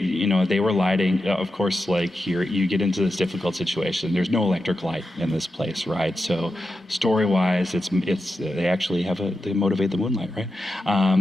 were lighting. Of course, here you get into this difficult situation. There's no electric light in this place, right? So story-wise, it's they actually they motivate the moonlight, right?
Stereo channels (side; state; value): both; normal; correlation 0.89